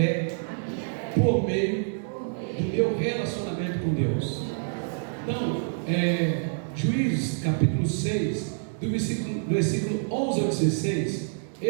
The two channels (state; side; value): silent; left; digital silence